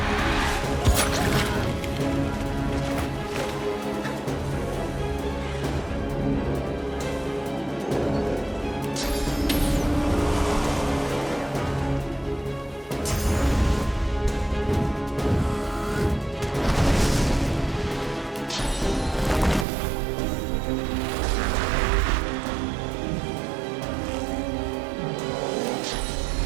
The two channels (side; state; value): left; drops out; at 19.7 s